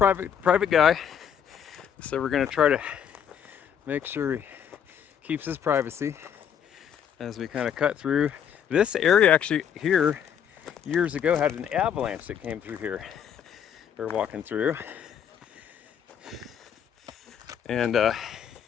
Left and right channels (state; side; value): quieter; right; 8.5 dB